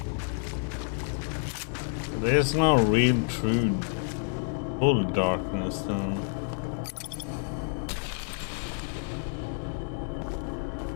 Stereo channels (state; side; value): silent; right; 59 dB below the other